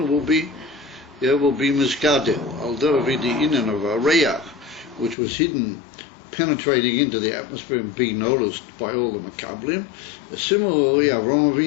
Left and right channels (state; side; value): drops out; right; at 5.2 s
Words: will be Miskadel. Although the inyan of Reach, which was hidden, penetrating into the atmosphere and being noticed by all the Makablim. Similarly, Avraham